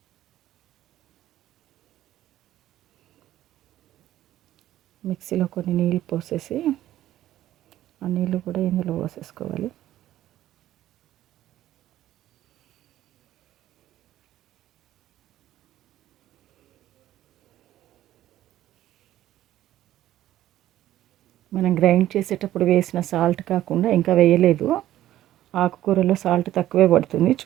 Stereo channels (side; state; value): left; quieter; 13.4 dB